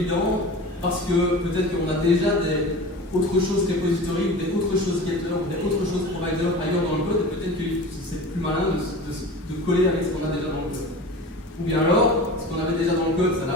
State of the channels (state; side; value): normal; both; correlation 0.35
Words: parce que peut-être qu'on a déjà des autre chose repository, ou des autres choses getter, ou des autres choses provider ailleurs dans le code, et peut-être que c'est plus malin de coller avec ce qu'on a déjà dans le code. Ou bien alors, ce qu'on avait déjà dans le code, ça